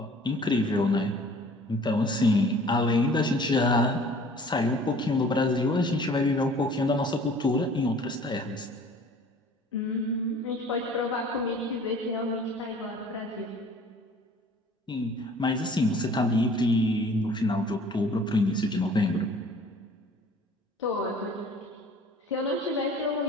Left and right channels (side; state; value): both; normal; correlation 0.50